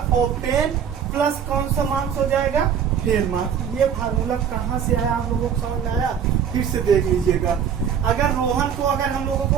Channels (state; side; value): quieter; left; 7.9 dB